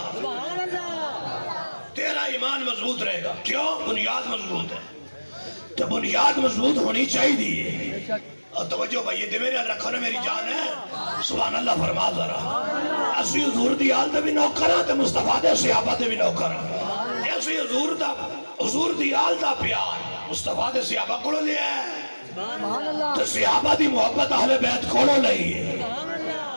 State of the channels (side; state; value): both; inverted; correlation -1.00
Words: تیرا ایمان مضبوط رہے گا، کیوں؟ بنیاد مضبوط ہے، تو بنیاد مضبوط ہونی چاہیے۔ اور توجہ بھائی یہ میرے رکھو نا، میری جان ہے، سبحان اللہ فرما ذرا، اسی حضور دی آل دے بھی نوکر ہاں تے مصطفیٰ دے صحابہ دے بھی نوکر ہاں، اسی حضور دی آل دا پیار مصطفیٰ دے صحابہ کو لیا ہے، تو صحابہ دی محبت اہل بیت کو لئی ہے۔